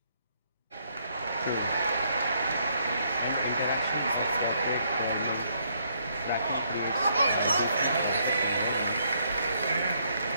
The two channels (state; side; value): inverted; both; correlation -0.71